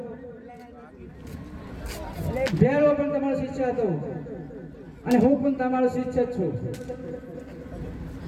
ભેરો પણ તમારો શિષ્ય હતો અને હું પણ તમારો શિષ્ય જ છું,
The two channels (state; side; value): identical; both; correlation 1.00